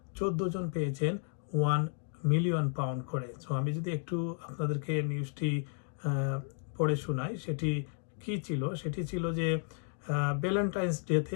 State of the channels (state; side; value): silent; right; 56 dB below the other